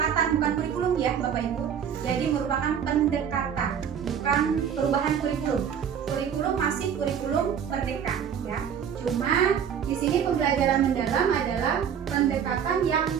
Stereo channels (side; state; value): left; quieter; 8.1 dB